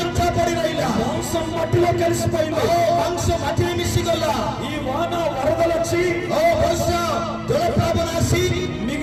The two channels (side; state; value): both; identical; correlation 1.00